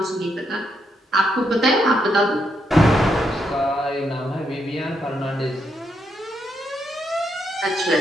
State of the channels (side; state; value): both; normal; correlation 0.79